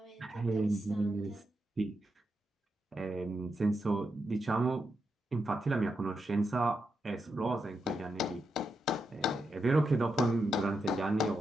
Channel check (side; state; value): both; normal; correlation 0.85